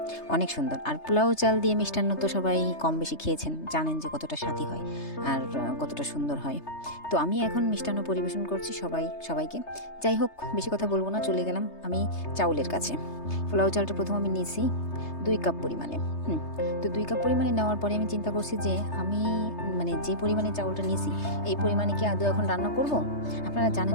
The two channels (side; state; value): right; late; 3.3 ms